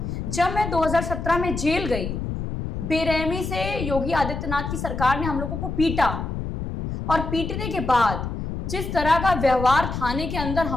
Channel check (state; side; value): noise; left; rumble, 5 dB below the sound